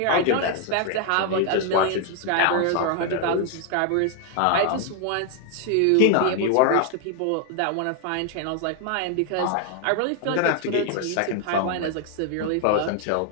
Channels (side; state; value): both; different; correlation 0.00